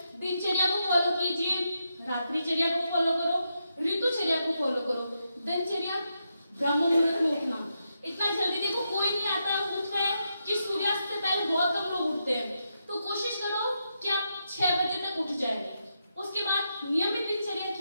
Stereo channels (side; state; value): both; inverted; correlation -0.84